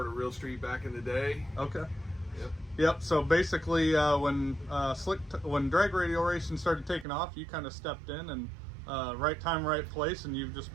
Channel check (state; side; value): drops out; left; at 7.1 s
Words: Real Street back in the day. Okay. Yep. So basically, when drag radial racing started taking off, you kind of stepped in and right time, right place, and you've just